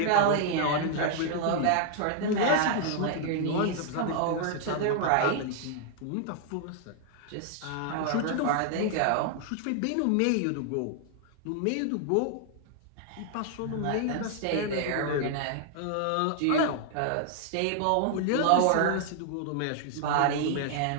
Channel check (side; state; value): both; different; correlation 0.00